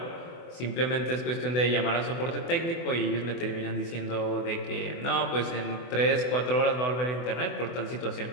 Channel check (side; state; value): right; late; 24 ms